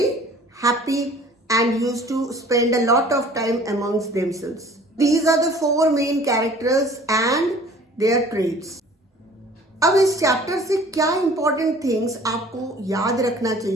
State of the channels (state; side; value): normal; both; correlation 0.50